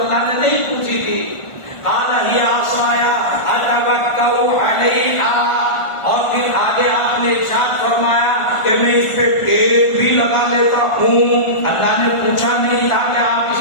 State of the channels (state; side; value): late; right; 1.4 ms